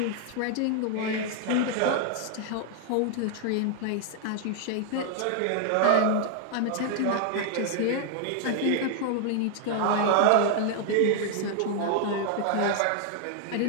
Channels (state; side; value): different; both; correlation 0.00